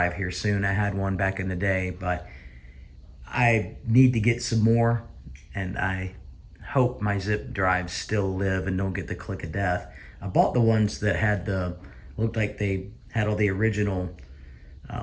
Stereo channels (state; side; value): identical; both; correlation 1.00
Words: here soon. I had one back in the day, but I need to get some more, and I hope my zip drives still live and don't get the click of death. I bought the ones that had looked like they had all the original